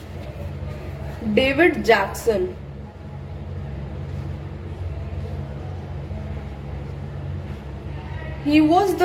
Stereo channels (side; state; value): both; identical; correlation 1.00